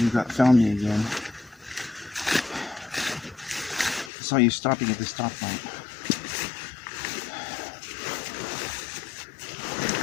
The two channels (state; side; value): drops out; right; at 4.1 s